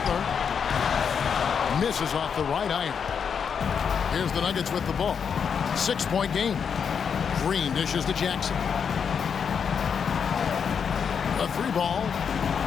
Misses off the right iron. Here's the Nuggets with the ball. 6-point game. Green dishes to Jackson. A 3 ball.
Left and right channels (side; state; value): right; quieter; 6.8 dB